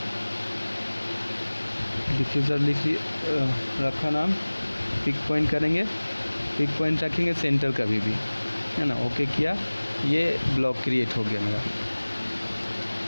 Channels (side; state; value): both; inverted; correlation -1.00